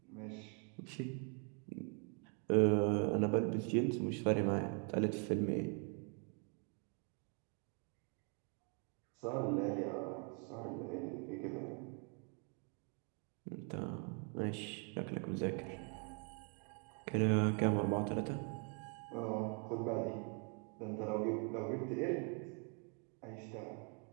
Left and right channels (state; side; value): quieter; left; 39.0 dB